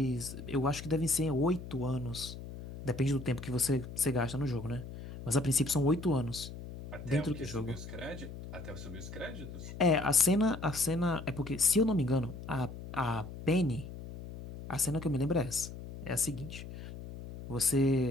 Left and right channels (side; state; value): left; noise; hum, 11 dB below the sound